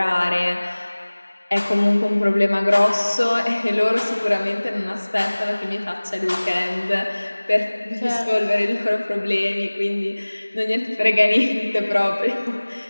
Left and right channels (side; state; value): both; inverted; correlation -1.00